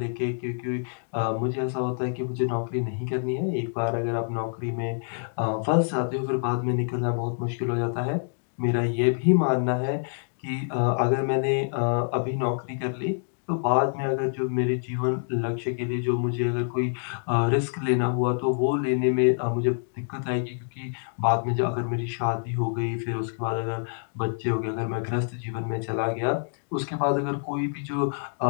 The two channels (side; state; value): right; silent; digital silence